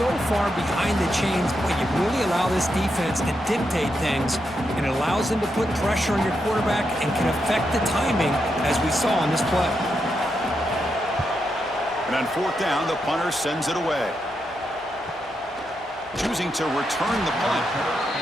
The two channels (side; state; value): both; normal; correlation 0.83